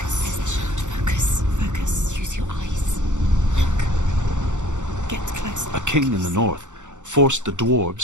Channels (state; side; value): late; left; 0.85 ms